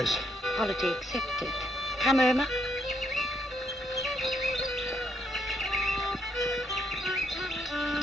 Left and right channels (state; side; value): normal; both; correlation 0.74